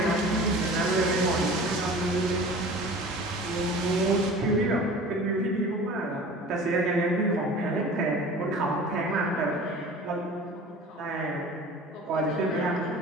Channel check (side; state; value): both; normal; correlation 0.41